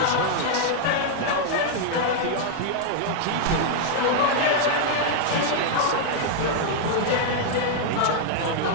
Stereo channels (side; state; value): both; different; correlation -0.01